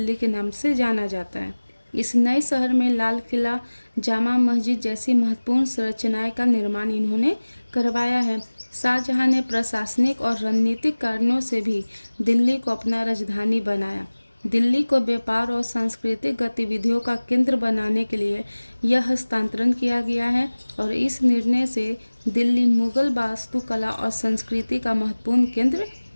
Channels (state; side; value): inverted; both; correlation -1.00